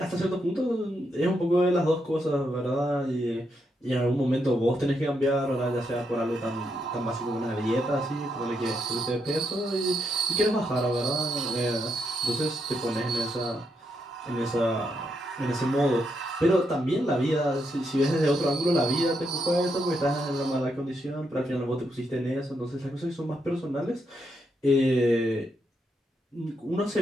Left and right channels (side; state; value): both; normal; correlation 0.80